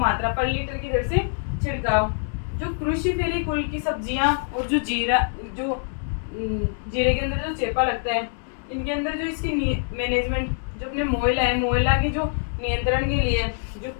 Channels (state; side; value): silent; right; 60 dB below the other